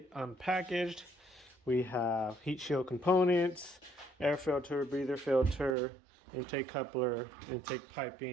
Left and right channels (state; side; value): drops out; left; at 5.8 s